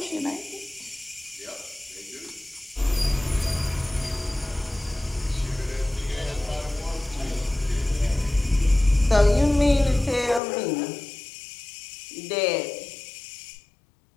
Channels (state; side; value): drops out; right; at 10.4 s